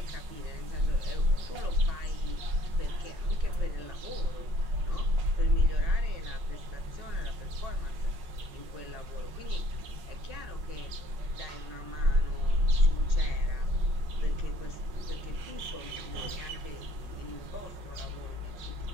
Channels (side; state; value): left; late; 5.4 ms